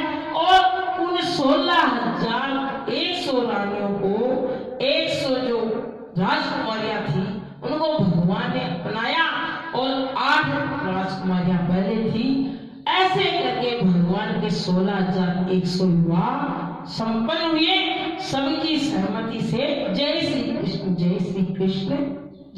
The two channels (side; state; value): both; identical; correlation 1.00